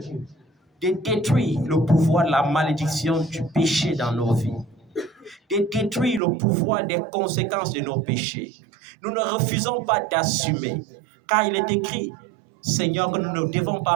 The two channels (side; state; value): left; drops out; at 6.2 s